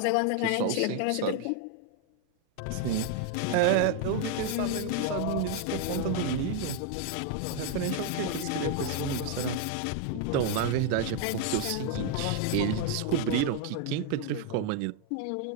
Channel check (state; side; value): different; both; correlation 0.00